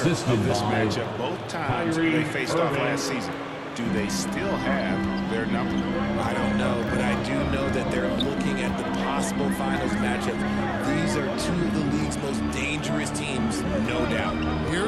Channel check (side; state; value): both; identical; correlation 1.00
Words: of this matchup both times they faced off last season. Do they still have their number? I don't know, but I do know that they're looking at the possible finals matchup. These are two of the league's most dangerous teams, no doubt.